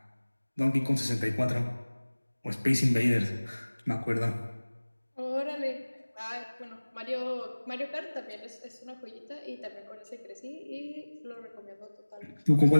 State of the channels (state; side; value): inverted; both; correlation -1.00